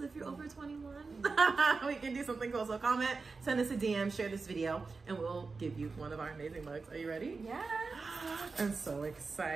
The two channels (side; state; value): left; quieter; 4.3 dB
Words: if you're over 21. We can do something cool. So comment, send us a DM, share this video, and we'll give you one of our amazing mugs. Are you ready? Yeah. I'm so